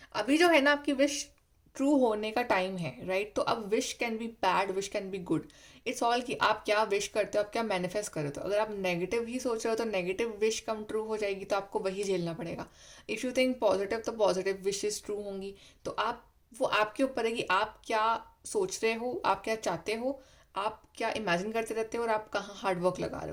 अभी जो है ना आपकी विश ट्रू होने का टाइम है, राइट? तो अब wish can be bad, wish can be good, it's all कि आप क्या विश करते हो, आप क्या मैनिफेस्ट करते हो। अगर आप नेगेटिव ही सोच रहे हो तो नेगेटिव विश कम ट्रू हो जाएगी, तो आपको वही झेलना पड़ेगा। इफ़ यू थिंक पॉजिटिव तो पॉजिटिव विशेस ट्रू होंगी। तो आप, वो आपके ऊपर है कि आप क्या सोच रहे हो, आप क्या चाहते हो, आप क्या इमेजिन करते रहते हो, और आप कहाँ हार्ड वर्क लगा रहे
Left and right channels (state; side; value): identical; both; correlation 1.00